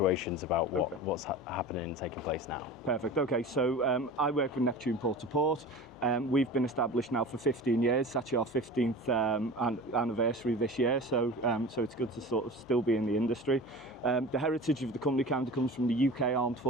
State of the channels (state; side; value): noise; left; hum, 29 dB below the sound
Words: about what's happening and taking place now. Perfect. Okay, so I work with Neptune Port to Port. We've been established now for 15 years. It's actually our 15th anniversary this year, so it's good to sort of still be in the industry. The heritage of the company kind of comes from the UK Armed